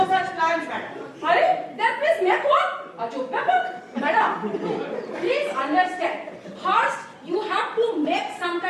such plans, madam. That means make what? Madam, please understand. First, you have to make some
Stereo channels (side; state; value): both; identical; correlation 1.00